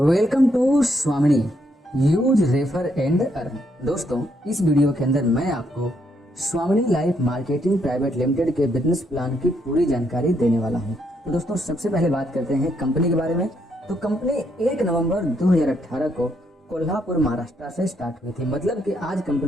to स्वामिनी use refer and earn. दोस्तों, इस वीडियो के अंदर मैं आपको स्वामिनी लाइफ मार्केटिंग प्राइवेट लिमिटेड के बिजनेस प्लान की पूरी जानकारी देने वाला हूं। तो दोस्तों, सबसे पहले बात करते हैं कंपनी के बारे में। तो कंपनी 1 नवंबर 2018 को कोल्हापुर महाराष्ट्र से स्टार्ट हुई थी। मतलब कि आज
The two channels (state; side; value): normal; both; correlation 0.75